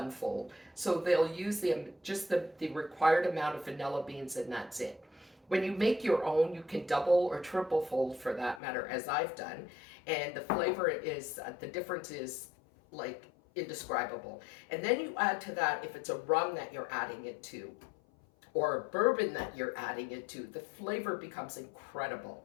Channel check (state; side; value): drops out; right; at 8.6 s